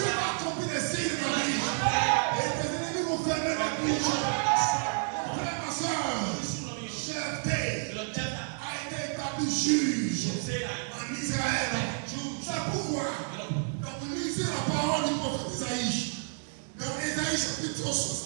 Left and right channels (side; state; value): left; silent; digital silence